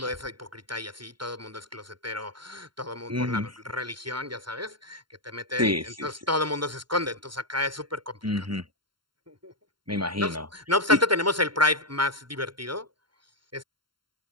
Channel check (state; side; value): late; left; 0.72 ms